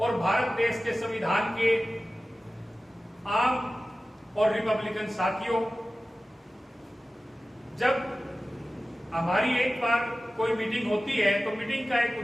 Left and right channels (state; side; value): normal; both; correlation 0.96